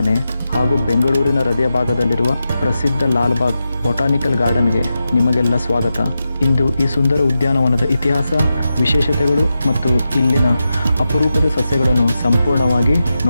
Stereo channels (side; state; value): both; inverted; correlation -0.89